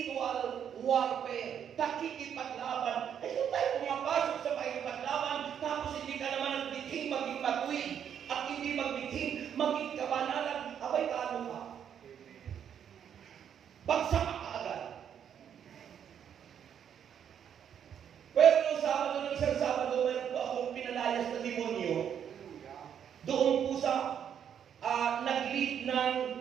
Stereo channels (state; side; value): quieter; left; 8.6 dB